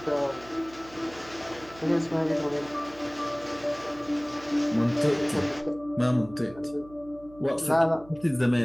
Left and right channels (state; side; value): noise; right; hum, 22 dB below the sound